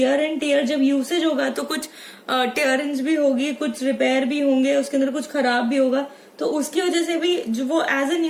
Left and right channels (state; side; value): identical; both; correlation 1.00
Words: एंड टेयर, जब यूसेज होगा तो कुछ टेयरिंग्स भी होगी, कुछ रिपेयर भी होंगे, उसके अंदर कुछ खराब भी होगा, तो उसकी वजह से भी जो वो एज ए